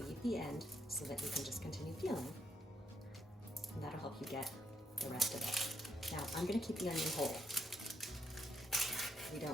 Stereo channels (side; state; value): both; normal; correlation 0.76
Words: the end so that you can just continue peeling, and that'll help you get the rest of it. Now, I'm going to keep the onion whole. We